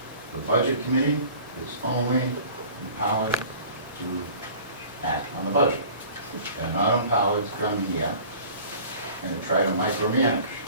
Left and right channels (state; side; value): inverted; both; correlation -0.46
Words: The budget committee is only empowered to act on the budget. They're not empowered to come here and to try to micromanage.